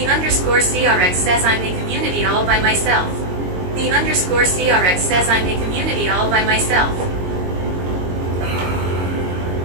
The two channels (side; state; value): left; late; 22 ms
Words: underscore CRX says I'm a community all by myself. The underscore CRX says I'm a community all by myself.